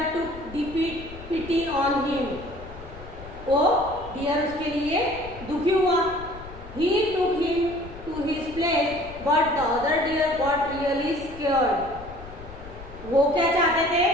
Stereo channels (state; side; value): noise; left; rumble, 15 dB below the sound